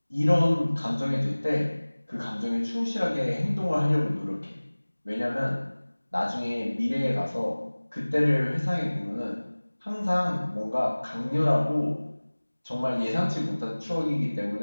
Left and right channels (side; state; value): both; inverted; correlation -1.00